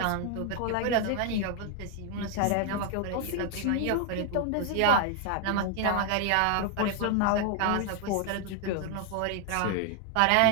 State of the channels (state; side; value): different; both; correlation 0.00